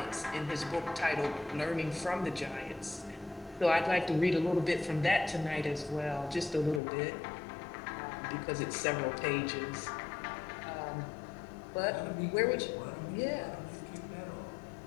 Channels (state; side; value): drops out; right; at 6.8 s